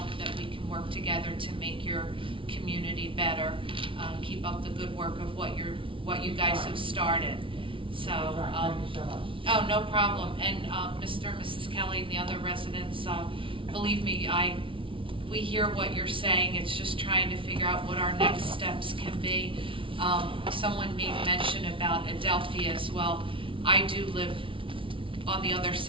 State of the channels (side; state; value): left; late; 0.25 ms